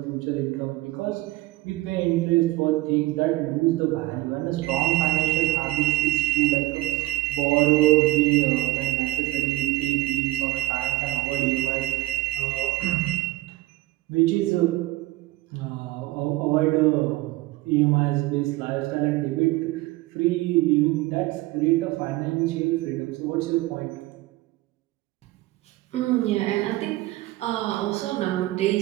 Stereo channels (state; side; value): quieter; left; 18.0 dB